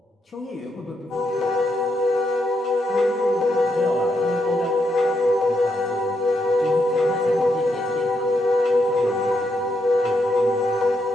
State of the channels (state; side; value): normal; both; correlation 0.80